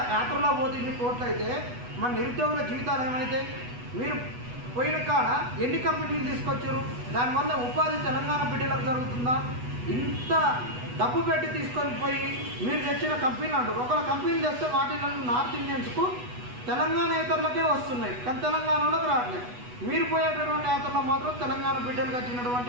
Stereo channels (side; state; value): left; late; 8.1 ms